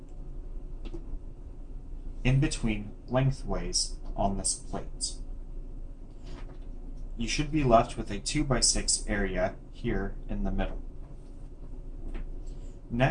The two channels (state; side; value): identical; both; correlation 1.00